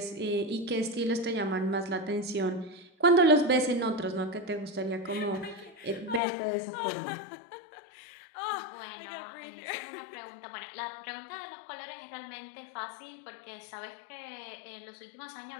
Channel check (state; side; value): drops out; right; at 6.2 s